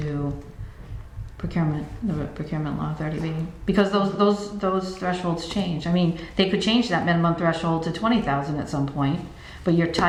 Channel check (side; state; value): both; identical; correlation 1.00